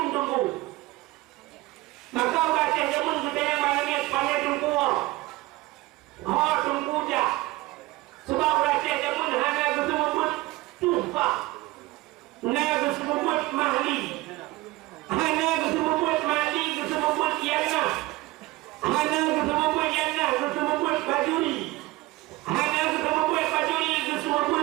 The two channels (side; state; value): left; quieter; 19.9 dB